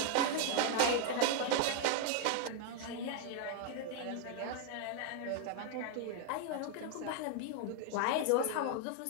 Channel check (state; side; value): different; both; correlation 0.00